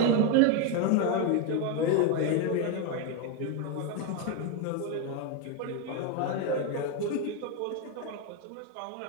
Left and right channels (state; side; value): different; both; correlation 0.02